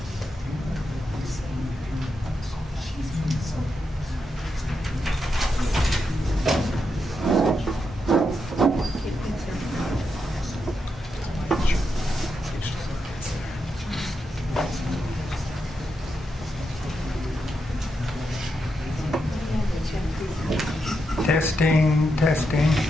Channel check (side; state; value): both; normal; correlation 0.84